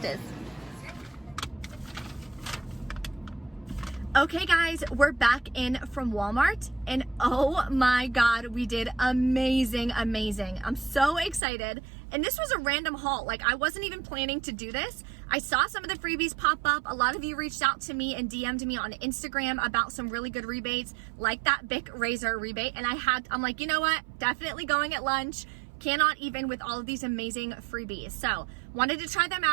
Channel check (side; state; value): left; drops out; at 11.4 s